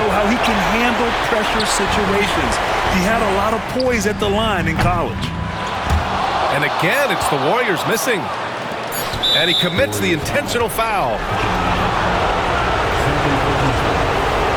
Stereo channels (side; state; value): both; identical; correlation 1.00